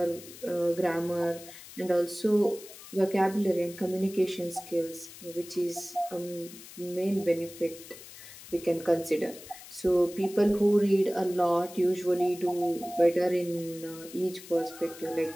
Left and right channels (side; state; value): left; noise; hiss, 17 dB below the sound